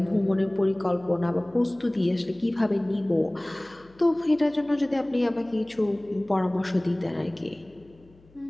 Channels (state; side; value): noise; left; hum, 28 dB below the sound